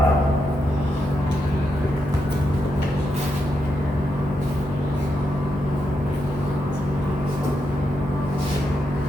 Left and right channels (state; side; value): normal; both; correlation 0.83